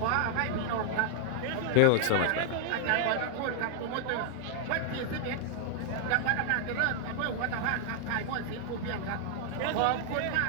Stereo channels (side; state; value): both; different; correlation 0.00